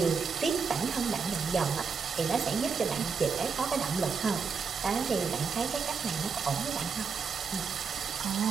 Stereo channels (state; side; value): quieter; left; 5.6 dB